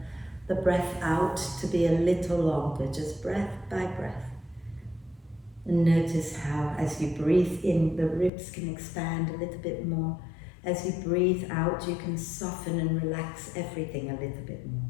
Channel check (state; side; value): drops out; right; at 8.3 s